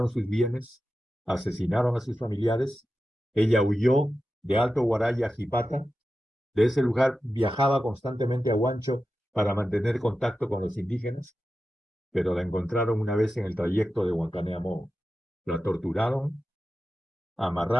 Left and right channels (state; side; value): normal; both; correlation 0.92